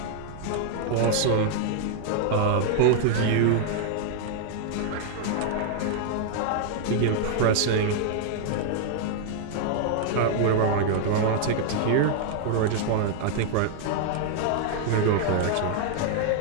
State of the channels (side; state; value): both; different; correlation 0.00